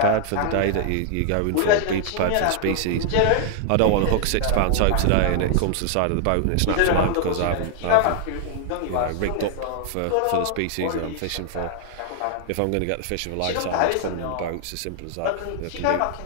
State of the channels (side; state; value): both; different; correlation 0.00